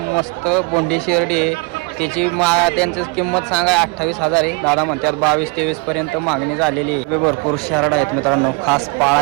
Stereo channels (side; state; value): left; quieter; 28.7 dB